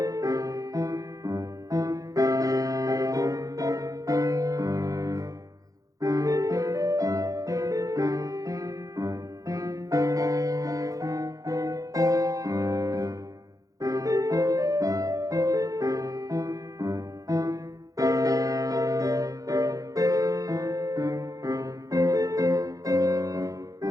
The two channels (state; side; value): late; left; 0.17 ms